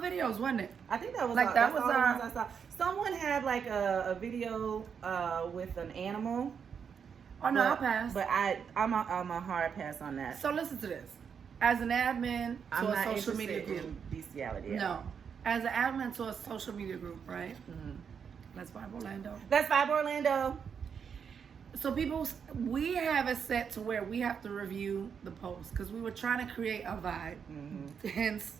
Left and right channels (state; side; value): quieter; left; 6.9 dB